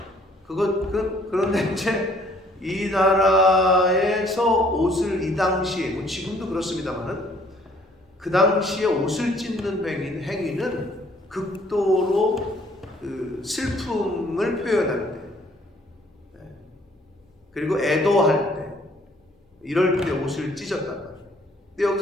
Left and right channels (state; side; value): normal; both; correlation 0.61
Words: 그런데 이제 이 나라에서 옷을 이 당시에 뭐 지금도 그렇습니다만은 그 당시에 옷을 찢는 행위는 극도로 슬픔을 표현할 때, 그리고 애도할 때, 이럴 때 옷을 찢었단 말이에요. 근데